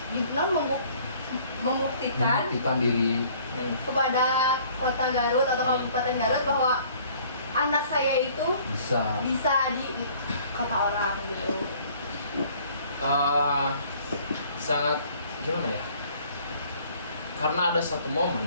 membuktikan diri. kepada kota Garut atau Kabupaten Garut bahwa anak saya itu bisa di kota orang gitu. Sangat gimana ya? Karena ada satu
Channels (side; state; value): both; inverted; correlation -0.56